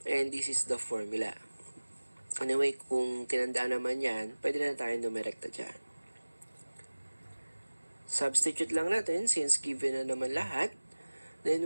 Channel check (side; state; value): both; inverted; correlation -1.00